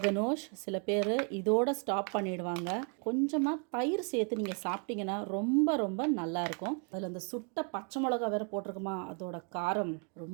கனோஷ் சில பேர் இதோட ஸ்டாப் பண்ணிடுவாங்க. கொஞ்சமாக தயிர் சேர்த்து நீங்கள் சாப்பிட்டீங்கன்னா ரொம்ப ரொம்ப நல்லாயிருக்கும். அதில் அந்த சுட்ட பச்சை மிளகா வேறு போட்டிருக்குமா, அதோட காரம்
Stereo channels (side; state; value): left; quieter; 39.1 dB